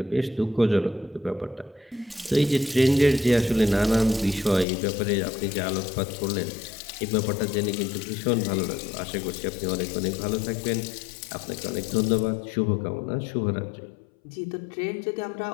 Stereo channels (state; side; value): drops out; right; at 4.7 s